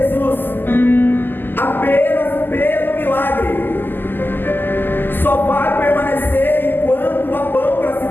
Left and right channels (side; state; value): right; late; 0.092 ms